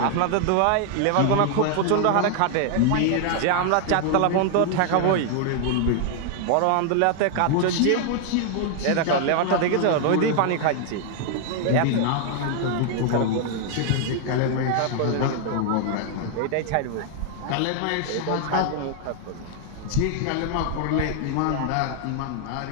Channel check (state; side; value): different; both; correlation 0.00